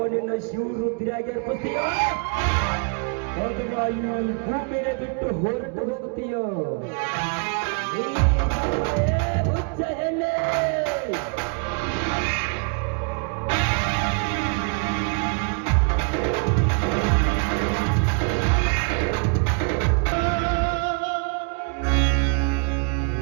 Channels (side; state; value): left; quieter; 38.9 dB